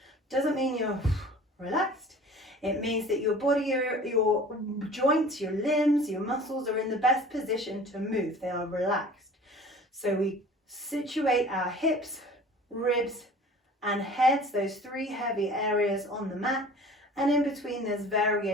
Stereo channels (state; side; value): normal; both; correlation 0.45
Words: Doesn't mean you're relaxed. It means that your body, your joints, your limbs, your muscles are in the best position to move. They are relaxed. So we situate our hips, ribs, and heads, those 3 heavy areas on the mat. And in between there's